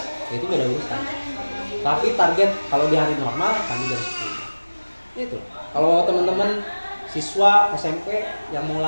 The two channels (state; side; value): inverted; both; correlation -1.00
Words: itu beda urusan. Tapi target kalau di hari normal kami jam 10. Itu. Kalau teman-teman siswa SMP yang mau